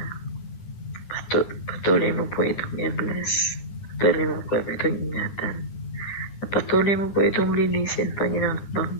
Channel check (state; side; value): late; right; 9.9 ms